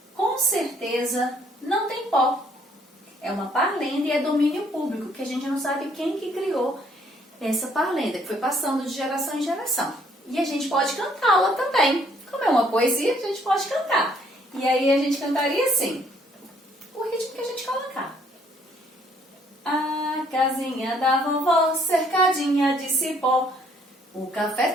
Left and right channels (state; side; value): normal; both; correlation 0.64